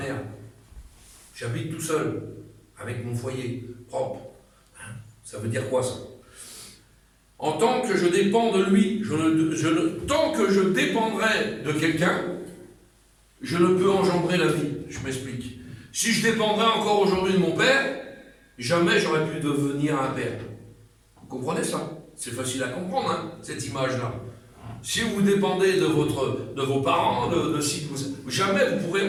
J'habite tout seul, avec mon foyer propre. Ça veut dire quoi ça? En tant que je dépends de lui, tant que je dépendrai de quelqu'un, je ne peux engendrer la vie. Je m'explique. Si je dépendrais encore aujourd'hui de mon père, jamais j'aurais pu devenir un père. Vous comprenez ça? C'est facile à comprendre, hein, cette image-là. Si vous dépendez de vos parents, jamais vous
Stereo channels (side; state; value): both; identical; correlation 1.00